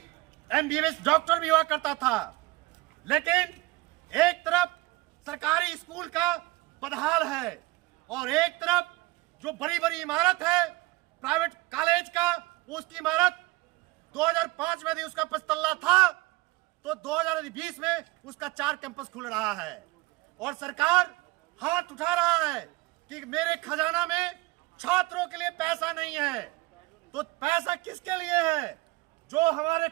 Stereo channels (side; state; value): left; quieter; 21.8 dB